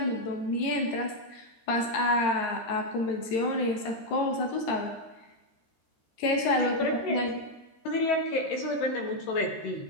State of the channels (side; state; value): right; late; 13 ms